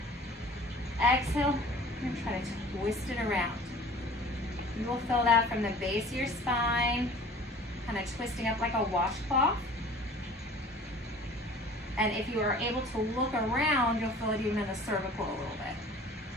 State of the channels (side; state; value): both; normal; correlation 0.46